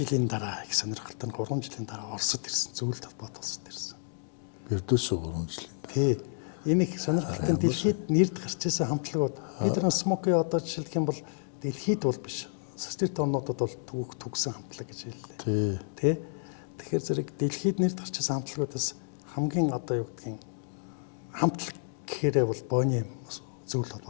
дараа их сонирхолтой нь 3 жилийн дараа Оросд ирсэн. Зөвлөлт холбоот Оросд ирсэн. Бердүсөө 3 жил. Тий. Энэ их сонирхолтой дэлхийд нэрд гарч ирсэн хамтлагууд бид нар Смоки одоо жишээлх юм бол дэлхийд бол биш. Социалист орнуудад бол төгсөн хамтлаг гэж хэллээ. Тий. Тэгэхээр зэрэг дэлхийд нэрд гарч ирсэн хамтлагуудаас хамгийн одоо юу гэдгийг хамтлаг гэхээрээ бол Бонием зөвлөлт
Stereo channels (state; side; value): silent; right; digital silence